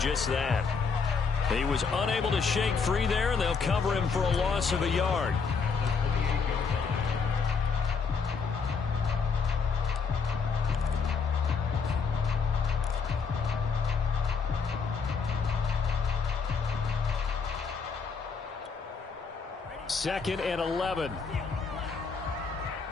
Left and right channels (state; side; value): quieter; right; 5.3 dB